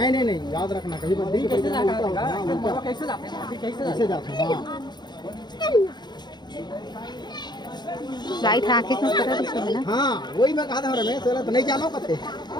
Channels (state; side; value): late; right; 0.21 ms